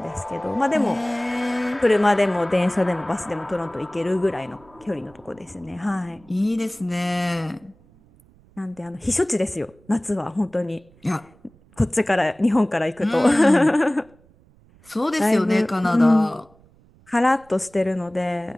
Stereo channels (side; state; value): right; noise; rumble, 29 dB below the sound